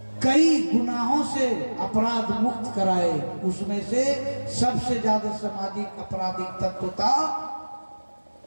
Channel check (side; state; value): both; inverted; correlation -1.00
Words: कई गुनाहों से अपराध मुक्त कराए, उसमें से सबसे ज्यादा सामाजिक आपराधिक तत्व था